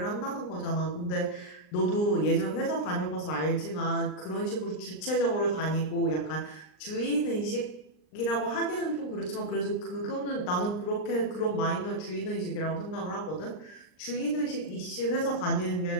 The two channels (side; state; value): right; late; 39 ms